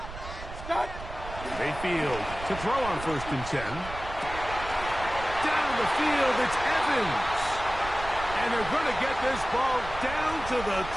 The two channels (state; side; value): noise; right; rumble, 11 dB below the sound